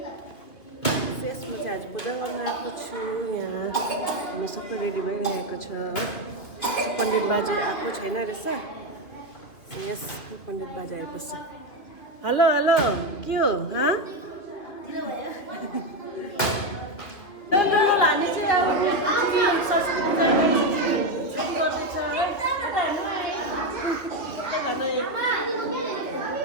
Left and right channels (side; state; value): right; late; 2.6 ms